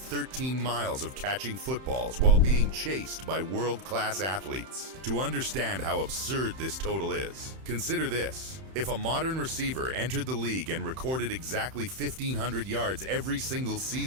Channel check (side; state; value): left; late; 31 ms